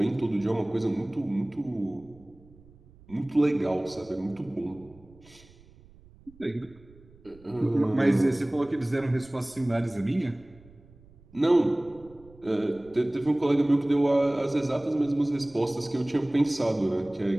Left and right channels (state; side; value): noise; right; rumble, 25 dB below the sound